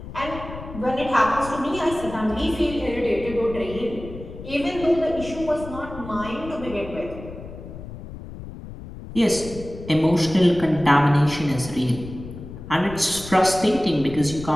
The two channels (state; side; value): noise; left; rumble, 13 dB below the sound